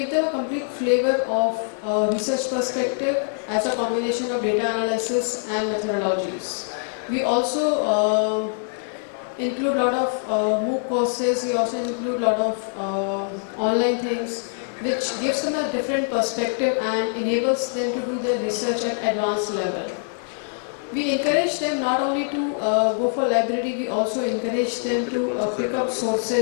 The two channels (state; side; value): silent; right; 63 dB below the other